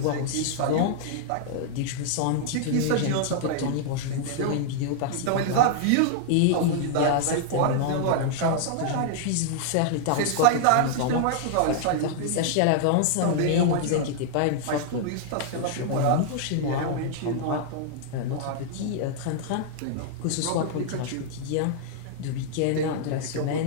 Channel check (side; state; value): both; different; correlation -0.01